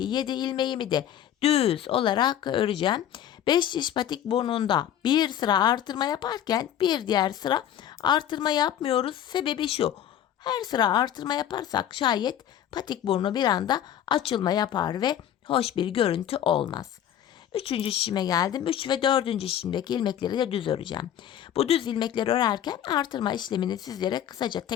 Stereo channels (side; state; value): right; quieter; 10.5 dB